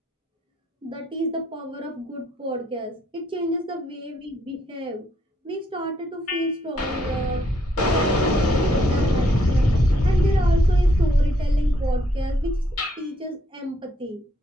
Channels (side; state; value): both; normal; correlation 0.72